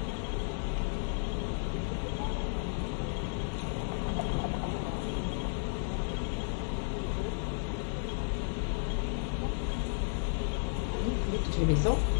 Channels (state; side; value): silent; right; digital silence